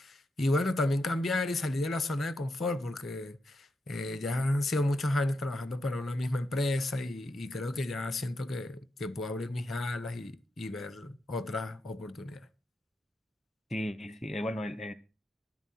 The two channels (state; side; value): normal; both; correlation 0.84